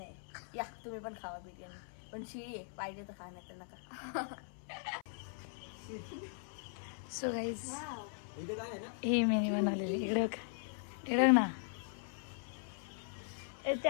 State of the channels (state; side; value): silent; right; 51 dB below the other